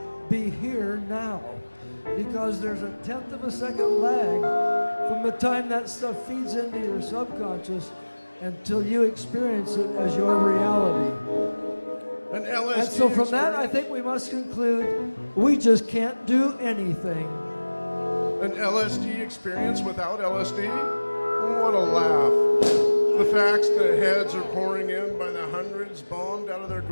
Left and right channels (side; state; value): both; inverted; correlation -1.00